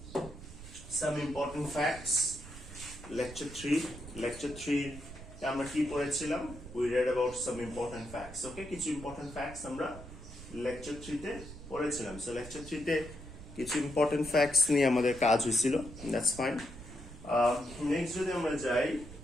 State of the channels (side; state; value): right; noise; rumble, 14 dB below the sound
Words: some important facts. Lecture 3 আমরা কি পড়েছিলাম? We read about some important facts. Okay, কিছু important facts আমরা lecture 3 তে পড়েছিলাম. So lecture 3 তে কিছু important facts নিয়ে আমাদের কাজ হয়েছিল. That's fine. Next যদি আমরা যাই